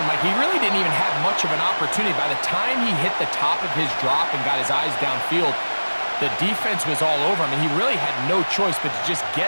Mike. He really didn't even have much of an opportunity. By the time he hit the top of his drop and got his eyes downfield, the defense was all over him, and he really had no choice but to just get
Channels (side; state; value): both; inverted; correlation -1.00